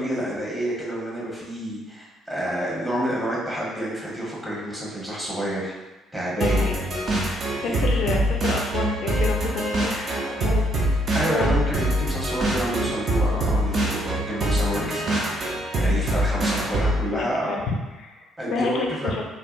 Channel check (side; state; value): both; normal; correlation 0.71